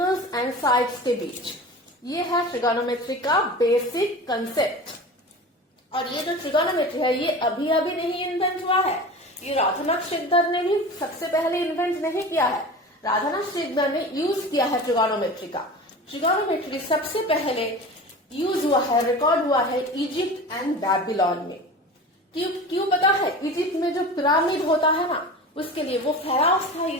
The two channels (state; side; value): normal; both; correlation 0.34